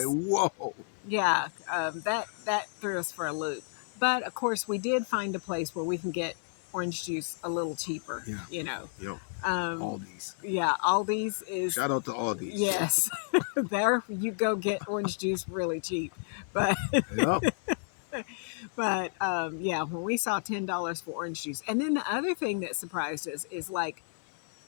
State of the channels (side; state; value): right; silent; 57 dB below the other